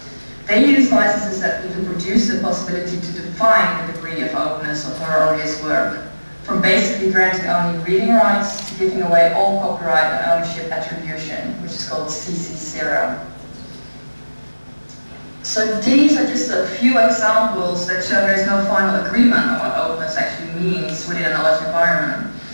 They use licenses that even produce the possibility to define the degree of openness of her or his work, from basically granting only reading rights to giving away all copyright and ownership attribution, which is called CC0. So these are just a few examples that show there is no final agreement on what openness actually means within a knowledge environment.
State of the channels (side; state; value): both; inverted; correlation -1.00